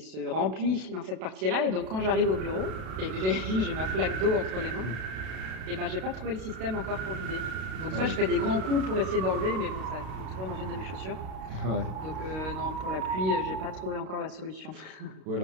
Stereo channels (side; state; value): left; late; 32 ms